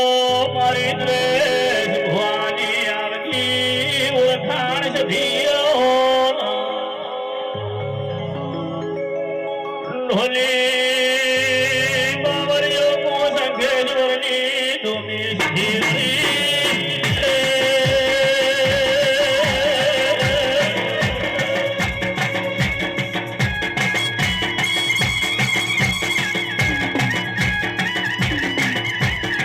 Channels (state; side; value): identical; both; correlation 1.00